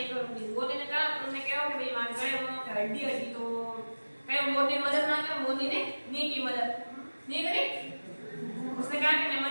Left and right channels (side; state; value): both; inverted; correlation -1.00